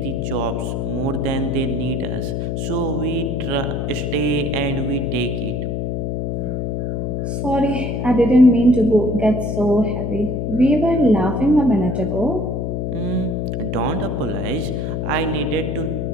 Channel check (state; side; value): noise; left; hum, 1 dB below the sound